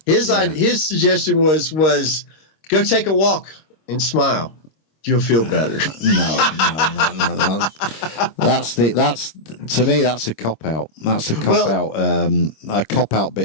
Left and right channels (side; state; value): right; late; 26 ms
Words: His suggestion was go take a walk and smile. You'll feel better. No. That's to me, that's a cop out. That's a cop out